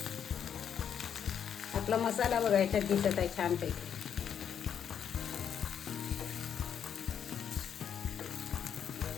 आपला मसाला बघा याच्यात दिसत आहे छानपैकी.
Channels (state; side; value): quieter; right; 8.4 dB